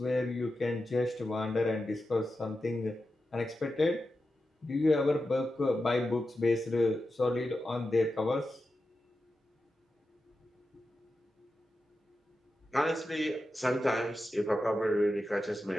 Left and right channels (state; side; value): normal; both; correlation 0.91